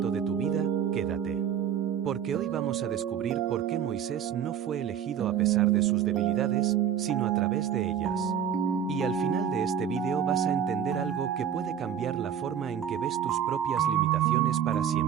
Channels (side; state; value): left; quieter; 8.8 dB